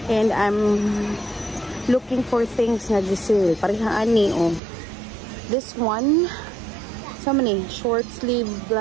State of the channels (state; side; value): drops out; left; at 4.6 s